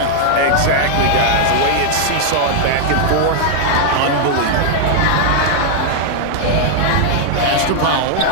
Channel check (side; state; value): both; different; correlation 0.00